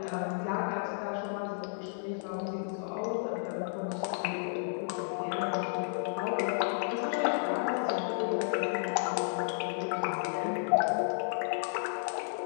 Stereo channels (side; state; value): right; silent; digital silence